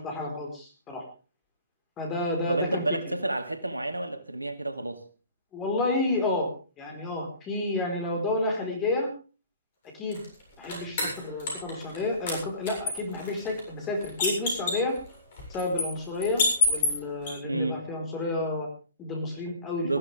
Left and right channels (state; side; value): inverted; both; correlation -0.44